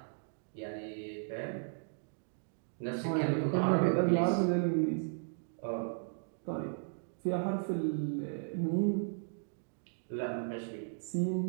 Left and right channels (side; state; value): left; silent; digital silence